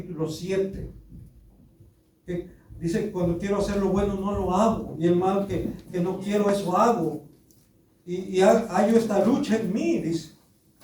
7. Que dice, cuando quiero hacer lo bueno no lo hago, y el mal que no quiero, eso hago. Y hallo esta lucha en mí, dice.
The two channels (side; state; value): both; identical; correlation 1.00